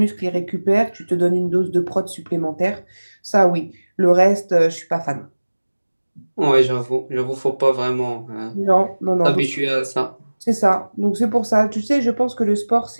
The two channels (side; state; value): both; inverted; correlation -1.00